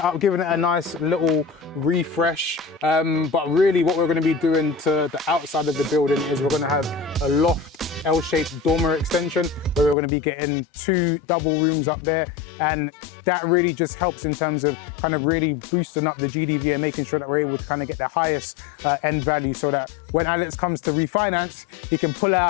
up, giving it a nice little refresh. But really what we're gonna be doing to the outside of the building is we're gonna have a loft L-shaped dormer extension where we're gonna be getting 2 double rooms up there. And that really just helps in terms of kind of really boosting up the GDV and making sure that we're able to kind of get the highest end value, so that when Alex comes to refinance, he can pull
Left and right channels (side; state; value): right; drops out; at 10.0 s